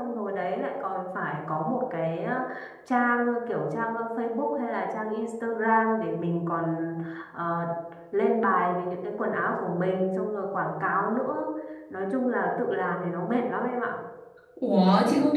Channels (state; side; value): identical; both; correlation 1.00